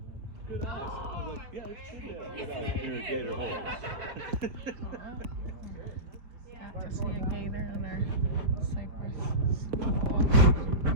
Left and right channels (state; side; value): late; left; 4.6 ms